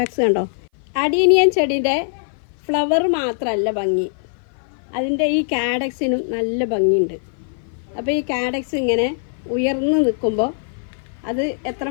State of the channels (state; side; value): silent; right; 56 dB below the other